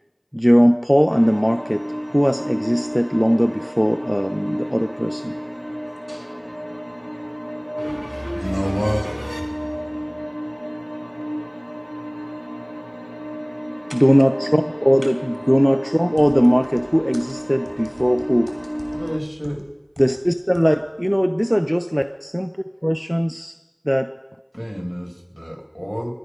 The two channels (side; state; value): both; identical; correlation 1.00